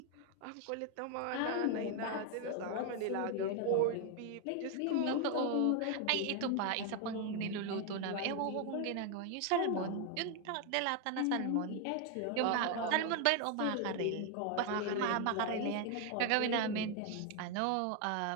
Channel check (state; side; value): different; both; correlation 0.01